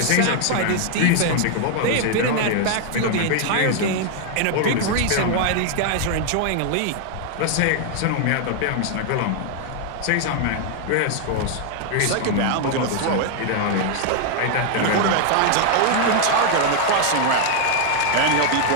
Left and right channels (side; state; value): both; different; correlation 0.00